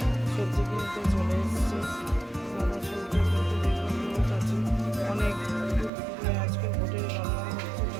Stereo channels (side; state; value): left; drops out; at 5.9 s